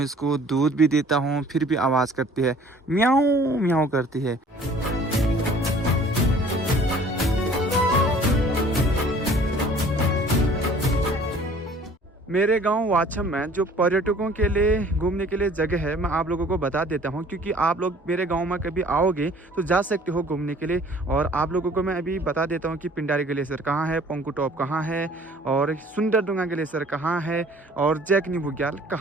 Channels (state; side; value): normal; both; correlation 0.52